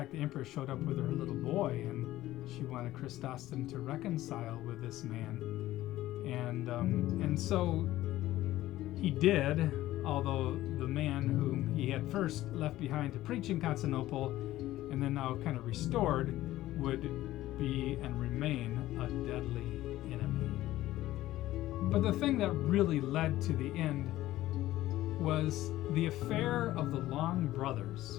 the empress showed up with her little boy, and she wanted Chrysostom to reconcile with this man. And so he did, although the man whom he had first left behind to preach in Constantinople and then now kind of restored would be and remain a deadly enemy. But the thing that really led to the end was the affair of the Long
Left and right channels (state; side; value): quieter; right; 15.3 dB